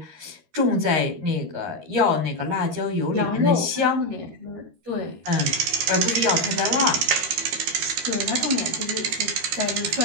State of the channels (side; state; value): left; late; 13 ms